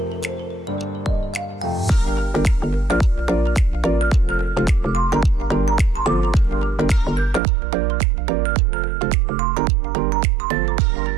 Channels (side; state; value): left; drops out; at 7.4 s